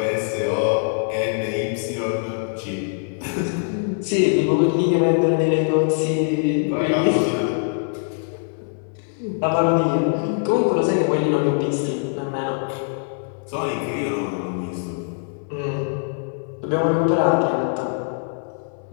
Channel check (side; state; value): right; silent; digital silence